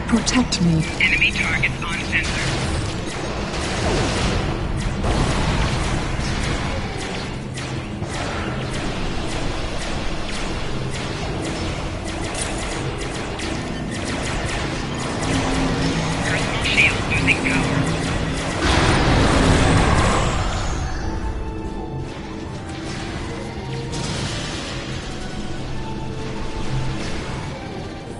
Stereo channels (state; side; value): identical; both; correlation 1.00